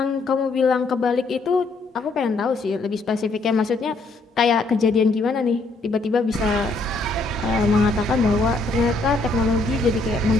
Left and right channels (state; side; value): quieter; right; 3.3 dB